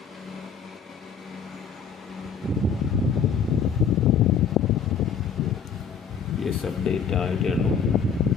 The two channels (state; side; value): quieter; right; 6.6 dB